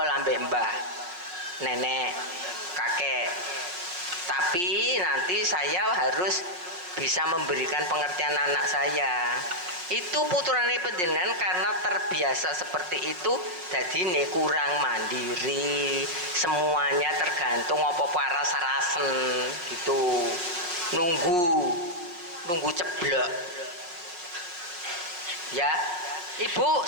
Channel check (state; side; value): late; left; 5.6 ms